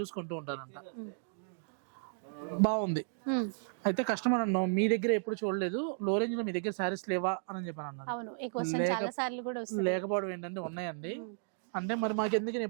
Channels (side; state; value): left; silent; digital silence